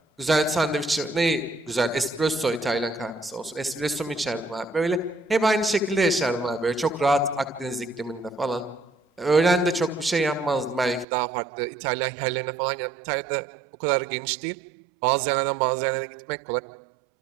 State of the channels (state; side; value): drops out; left; at 11.1 s